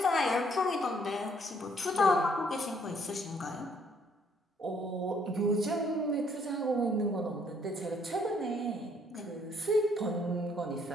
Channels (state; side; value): normal; both; correlation 0.66